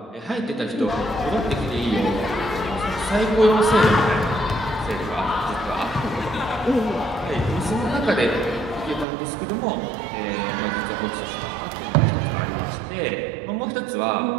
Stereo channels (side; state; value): left; drops out; at 9.1 s